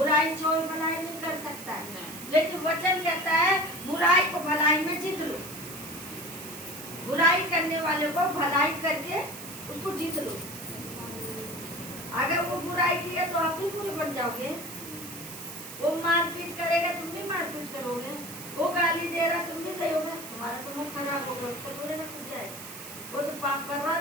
छोड़ भलाई नहीं कर सकता है। लेकिन वचन कहता है बुराई को भलाई में जीत लो। बुराई करने वाले को भलाई करके उसको जीत लो। अगर वो बुराई की है तो आप भी बुरे बन जाओगे। वो मारपीट करेगा, तुम भी मारपीट करोगे। वो गाली दे रहा, तुम भी दोगे। तुम्हारा तो मुंह खराब होगा, उसको थोड़े ना कुछ जाए। वो तो पाप कर रहा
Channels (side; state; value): right; noise; hiss, 12 dB below the sound